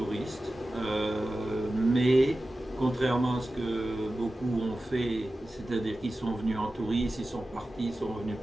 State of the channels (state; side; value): normal; both; correlation 0.94